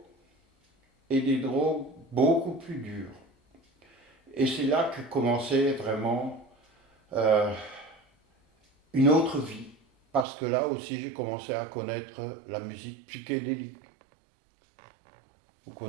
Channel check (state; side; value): drops out; left; at 10.2 s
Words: et des drogues beaucoup plus dures. Et c'est là que commençait vraiment une autre vie. Parce que là aussi, j'ai commencé à connaître la musique psychédélique. Vous